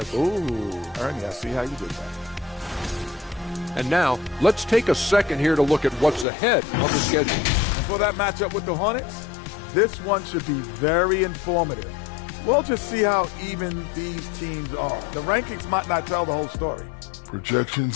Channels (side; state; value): right; drops out; at 6.2 s